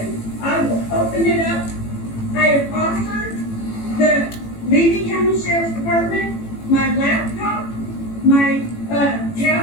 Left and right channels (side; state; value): right; late; 18 ms